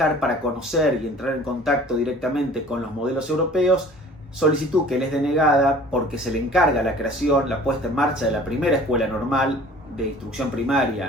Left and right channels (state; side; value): normal; both; correlation 0.48